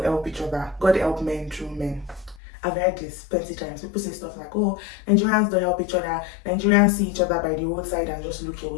help each other. God help men through men. I've heard this plenty times. People say stuff like, oh, Nigerians don't help each other. Nigerians see each other by the roadside and just look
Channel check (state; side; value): drops out; right; at 2.4 s